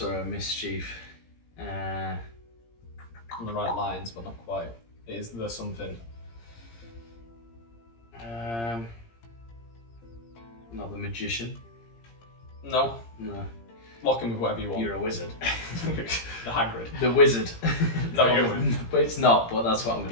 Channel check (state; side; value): late; right; 17 ms